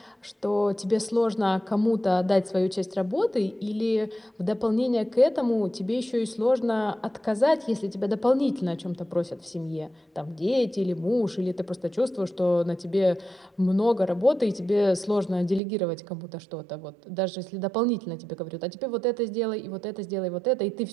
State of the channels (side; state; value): left; drops out; at 15.6 s